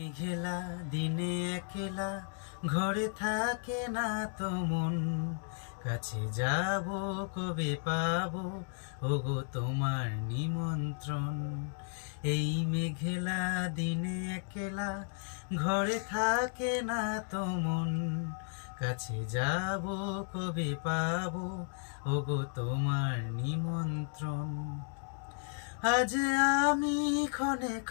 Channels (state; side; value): silent; right; 55 dB below the other